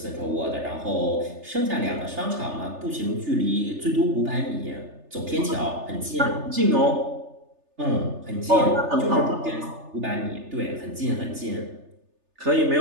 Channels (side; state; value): left; late; 3.3 ms